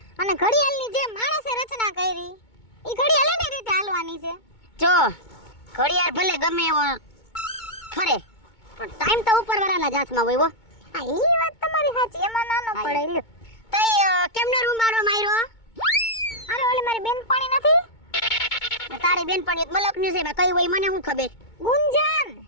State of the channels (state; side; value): late; right; 2.2 ms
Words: અને ઘડિયાળની જે માણસે રચના કરી, એ ઘડિયાળ એની રીતે હાલવાની છે. જો ઘડિયાળ ભલે ગમે એવો ફરે, પણ ટાઈમ તો ઉપરવાળાના જ હાથમાં હોય. હા, ઈ વાત તમારી સાચી, એમાં નાનો પડે. લ્યો તઈ કેમનો રૂમારો માર્યો? અરે ઓલી મારી બેનપણી નથી, તારી બેનપણી મલકની છે, કઈ હોય મને શું ખબર. ગુંજન